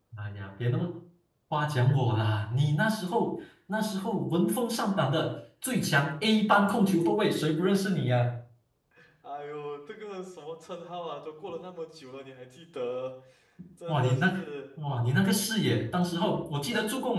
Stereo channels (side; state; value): both; identical; correlation 1.00